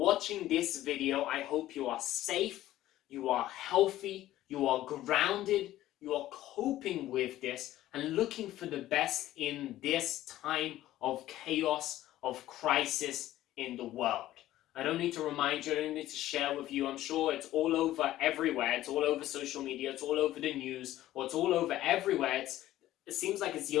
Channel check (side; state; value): right; quieter; 14.4 dB